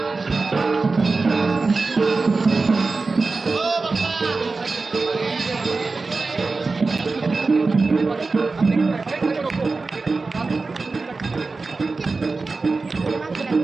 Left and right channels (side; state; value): left; quieter; 3.9 dB